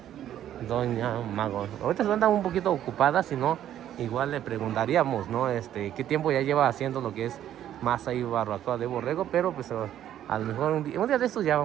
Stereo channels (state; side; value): quieter; left; 11.3 dB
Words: Doña Mago, ahorita se andan un poquito ocupadas, si no, igual le preguntaríamos, ¿no? Qué tiempo ya lleva haciendo lo que es masa y barbacoa de borrego, pero pues a lo mejor un día de estos ya